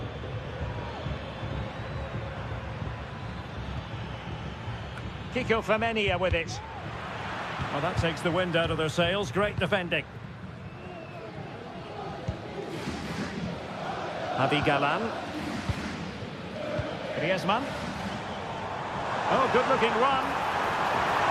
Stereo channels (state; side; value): identical; both; correlation 1.00